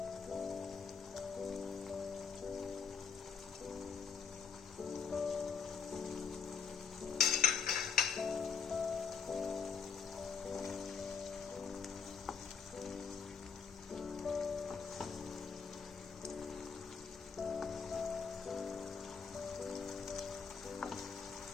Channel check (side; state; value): right; quieter; 6.0 dB